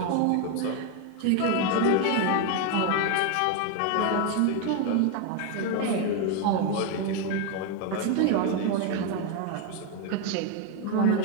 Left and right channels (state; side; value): different; both; correlation 0.01